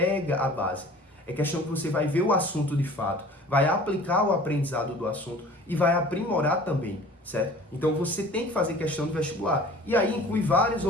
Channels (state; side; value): normal; both; correlation 0.46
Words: a base. É questão que você vai ver o assunto de fato, vai aplicar o aprendizado do assunto e vai aprimorar também, certo? Então você tem que fazer questão de vestibular. E aí inclui várias